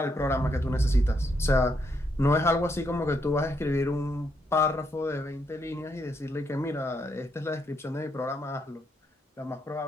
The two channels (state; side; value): normal; both; correlation 0.77